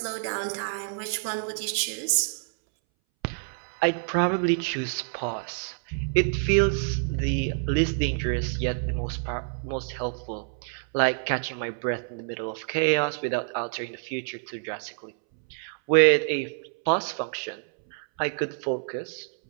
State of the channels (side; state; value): left; silent; 60 dB below the other